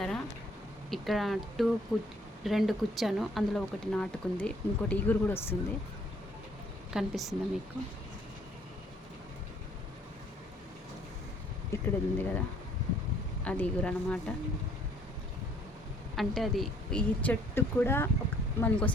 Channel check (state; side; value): normal; both; correlation 0.62